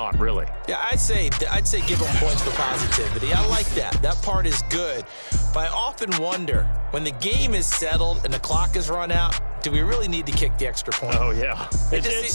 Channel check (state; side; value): inverted; both; correlation -1.00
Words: really. Yeah, I'd say give them points for positivity. I like that. That part is good. But I often wonder, when the game is settled and the clock is run out, do we really need to kick the extra point? Oh, yeah. It's